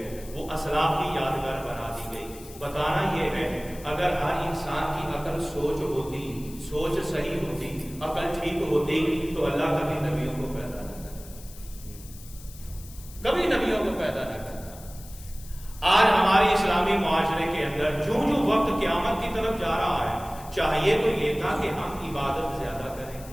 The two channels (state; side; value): noise; left; hiss, 19 dB below the sound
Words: وہ اسلاف کی یادگار بنا دی گئی۔ بتانا یہ ہے اگر ہر انسان کی عقل سوچ ہوتی، سوچ صحیح ہوتی، عقل ٹھیک ہوتی تو اللہ کبھی نبیوں کو پیدا نہ کرتا، کبھی نبیوں کو پیدا نہ کرتا۔ آج ہمارے اسلامی معاشرے کے اندر جو وقت قیامت کی طرف جا رہا ہے، چاہیے تو یہ تھا کہ ہم عبادت زیادہ کریں۔